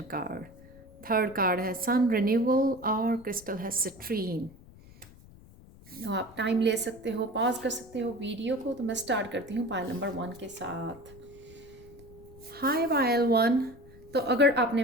कार्ड। थर्ड कार्ड है सन रिन्यूअल और क्रिस्टल है सिट्रीन। तो आप टाइम ले सकते हो, पॉज कर सकते हो वीडियो को। तो मैं स्टार्ट करती हूँ पायल नंबर 1 के साथ। हाय पायल 1। तो अगर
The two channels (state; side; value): noise; left; rumble, 21 dB below the sound